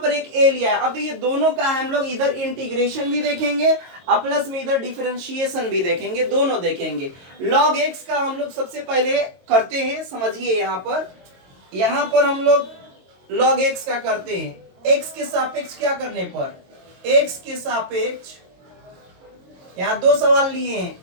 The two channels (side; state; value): left; late; 22 ms